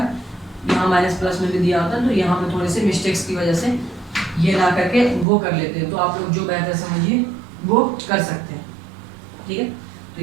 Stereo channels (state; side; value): drops out; left; at 5.2 s